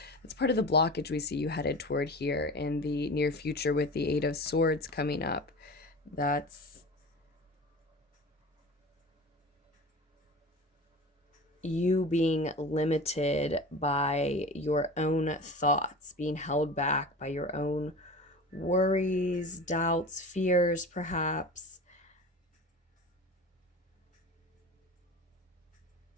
part of the blockage we see you headed toward here in the near future with the Eight of Swords coming up. That's you being limited by your own thoughts, being held back by your own worries, doubts, fears, perhaps.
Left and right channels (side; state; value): both; normal; correlation 0.34